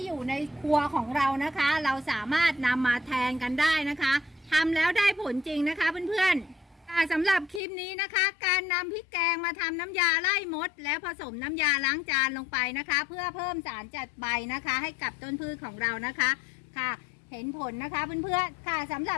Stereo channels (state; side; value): drops out; right; at 7.6 s